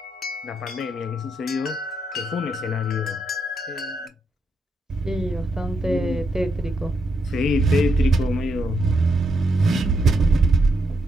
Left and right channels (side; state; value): both; normal; correlation 0.80